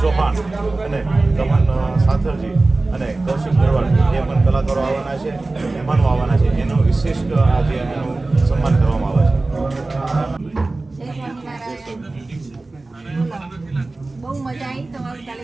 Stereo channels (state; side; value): quieter; left; 3.2 dB